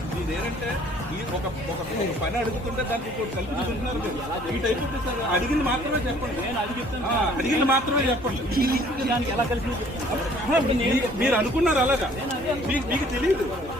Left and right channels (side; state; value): both; normal; correlation 0.56